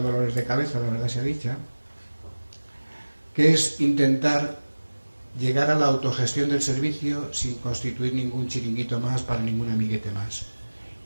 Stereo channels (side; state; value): both; inverted; correlation -1.00